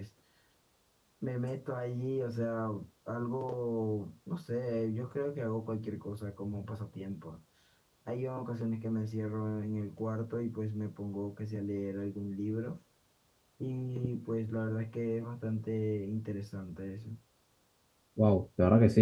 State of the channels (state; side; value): identical; both; correlation 1.00